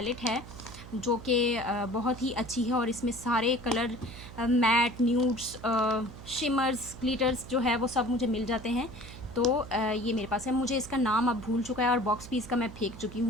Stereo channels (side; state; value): right; noise; hum, 15 dB below the sound